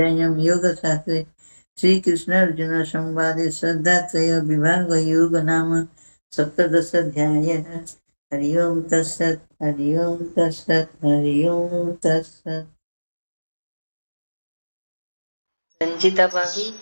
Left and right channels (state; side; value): inverted; both; correlation -1.00